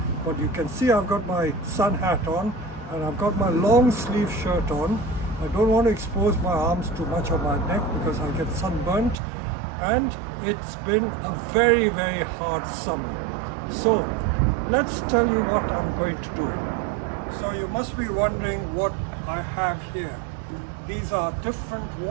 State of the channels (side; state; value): left; drops out; at 9.2 s